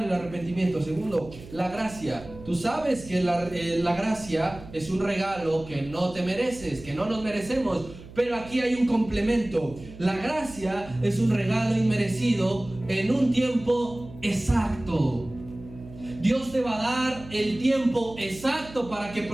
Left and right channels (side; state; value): right; noise; hum, 17 dB below the sound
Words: el arrepentimiento. Segundo, la gracia. Tú sabes que la gracia es un regalo que no te mereces, que no nos merecemos, pero aquí hay un complemento. La gracia es un regalo inmerecido en un tiempo exacto. Dios te va a dar el tiempo exacto para que